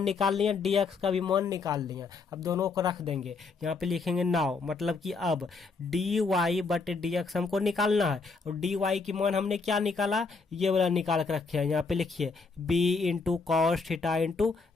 निकाल लिया, डी एक्स का भी मान निकाल लिया। अब दोनों को रख देंगे, यहाँ पे लिखेंगे नाउ, मतलब कि अब डी वाई बटे डी एक्स हमको निकालना है, और डी वाई की मान हमने क्या निकाला, ये वाला निकाल के रखे हैं। यहाँ पे लिखिए B into cos theta into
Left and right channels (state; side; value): quieter; right; 4.4 dB